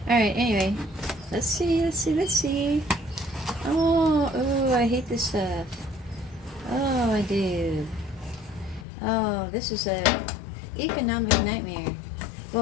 Alright, anyway. Let's see. Oh, I hate this stuff. Oh, I do. Oh, this is a economic nightmare.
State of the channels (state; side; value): drops out; right; at 8.8 s